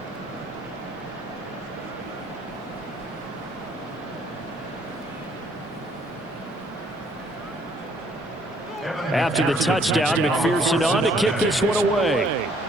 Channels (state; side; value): normal; both; correlation 0.64